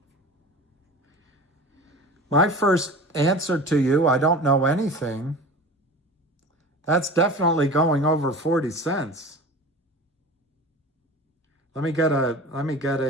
My first answer to you, I don't know anything. That's definitely going over 40 cents. Let me get a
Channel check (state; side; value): normal; both; correlation 0.36